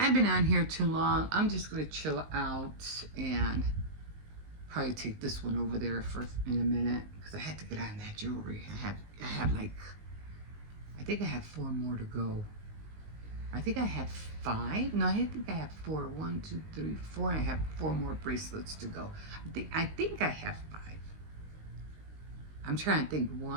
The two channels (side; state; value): left; late; 19 ms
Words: been on here too long. I'm just gonna chill out and probably take this one over there in a minute because I had to get on that jewelry. I have like, I think I have 4 more to go. I think I have 5. No, I think I have 4. 1, 2, 3, 4. I have 4 more bracelets to go. I think I have 5. I'm trying to think.